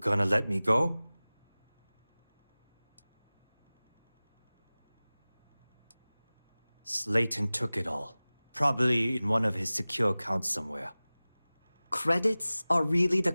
let me go? Slayton took it all. Probably in one of his secure accounts somewhere. Credits are really the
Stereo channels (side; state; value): both; inverted; correlation -0.98